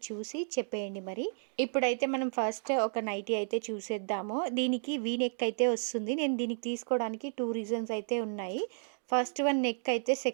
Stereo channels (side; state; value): left; silent; digital silence